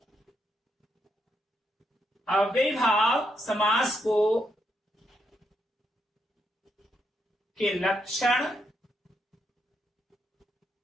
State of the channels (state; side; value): normal; both; correlation 0.79